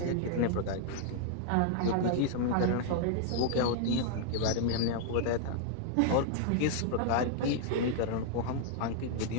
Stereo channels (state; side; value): different; both; correlation -0.01